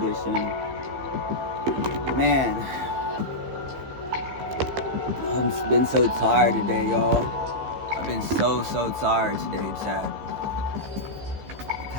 Man, I've been so tired today, y'all. I've been so tired today, chat.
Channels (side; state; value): left; late; 15 ms